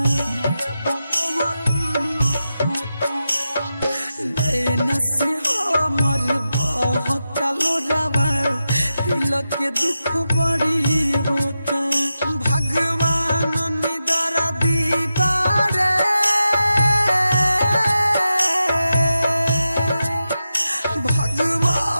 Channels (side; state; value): both; inverted; correlation -0.90